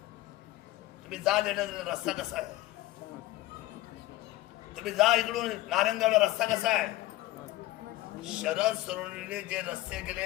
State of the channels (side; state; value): right; quieter; 17.0 dB